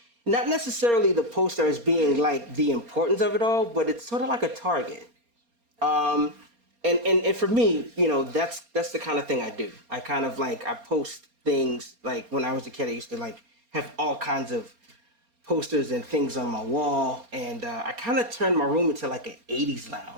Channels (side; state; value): left; late; 4.3 ms